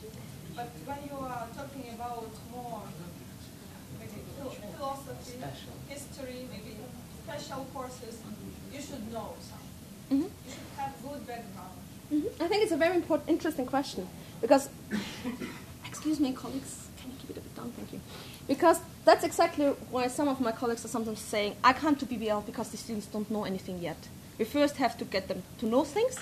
But when you are special courses, you should know something. Mhm. You should have good background. I think it's a very interesting question because, excuse me, colleagues, can you keep it a bit down? Thank you. Because that's exactly why some of my colleagues are sometimes saying, I can't do BBL because the students don't know anything yet. We first have to get them to know things,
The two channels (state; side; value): identical; both; correlation 1.00